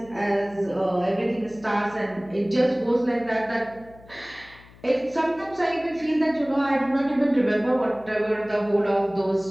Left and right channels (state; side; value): noise; left; hum, 23 dB below the sound